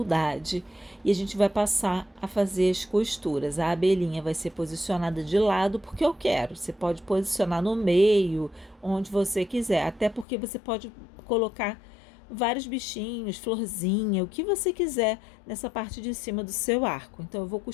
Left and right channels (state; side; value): drops out; right; at 10.2 s